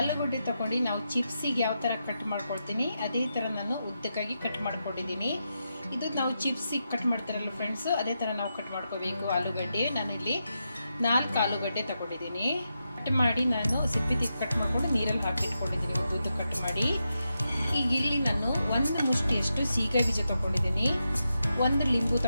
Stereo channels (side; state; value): both; inverted; correlation -0.87